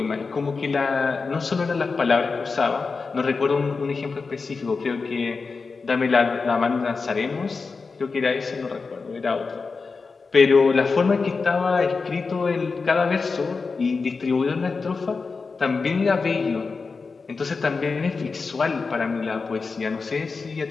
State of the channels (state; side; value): quieter; right; 4.5 dB